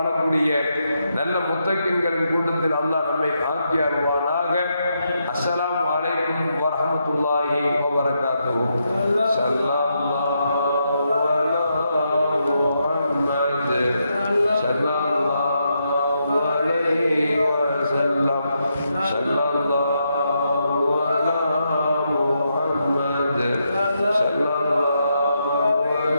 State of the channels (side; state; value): both; inverted; correlation -0.81